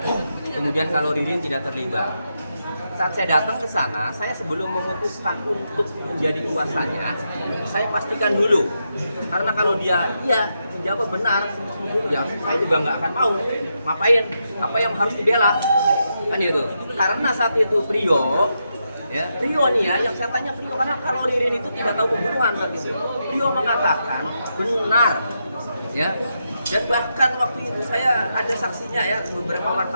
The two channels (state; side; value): inverted; both; correlation -0.84